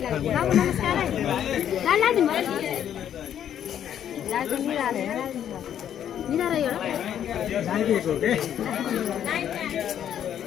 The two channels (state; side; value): quieter; right; 9.9 dB